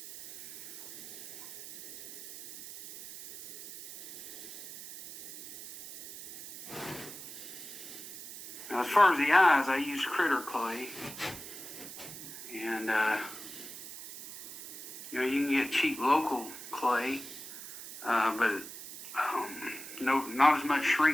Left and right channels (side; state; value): right; noise; hiss, 12 dB below the sound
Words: Now, as far as the eyes, I use critter clay. And, you know, you can get cheap local clay, but not as much